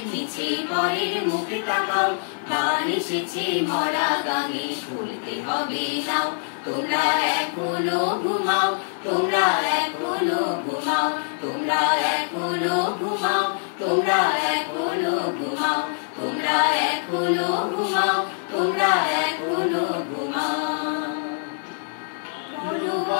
নিচে পরের মুখে তাকাও। মান এসেছে মরা গাঙে খুলতে হবে নাও, তোমরা এখনো ঘুমাও, তোমরা এখনো ঘুমাও, তোমরা এখনো ঘুমাও, তোমরা এখনো ঘুমাও, তোমরা এখনো ঘুমাও, তোমরা এখনো ঘুমাও। বলো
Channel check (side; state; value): right; silent; digital silence